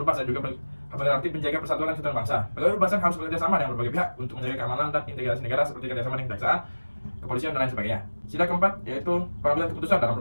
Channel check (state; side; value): inverted; both; correlation -1.00